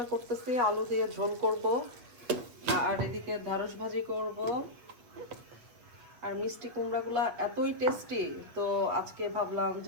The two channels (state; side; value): late; left; 7.9 ms